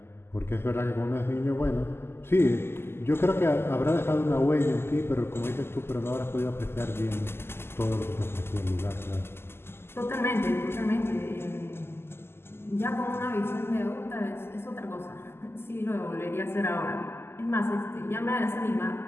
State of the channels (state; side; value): late; right; 0.12 ms